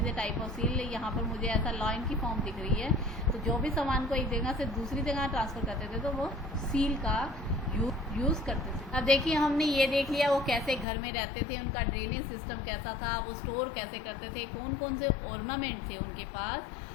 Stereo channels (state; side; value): drops out; right; at 10.9 s